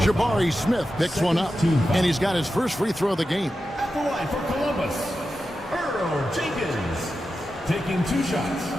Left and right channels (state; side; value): normal; both; correlation 0.91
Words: Jabari Smith picks one up, and he's got his first free throw of the game. At the line for Columbus, Earl Jenkins, taking 2 shots.